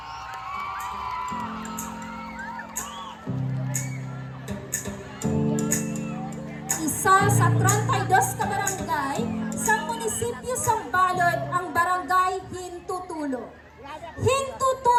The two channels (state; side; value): identical; both; correlation 1.00